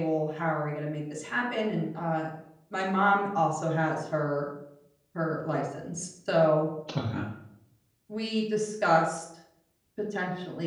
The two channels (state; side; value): identical; both; correlation 1.00